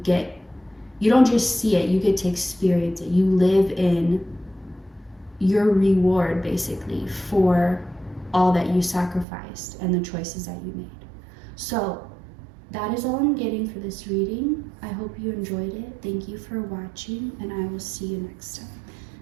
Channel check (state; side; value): drops out; left; at 9.2 s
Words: you don't just see it, you get to experience it. You live in your reward basically for all that you sacrificed and the choices that you made. So that is all I'm getting for this reading. I hope you enjoyed it. Thank you for watching, and I will see you next time.